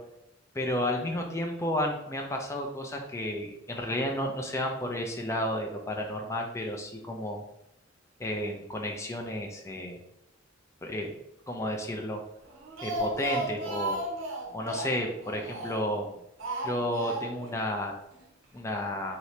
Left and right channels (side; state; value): both; normal; correlation 0.28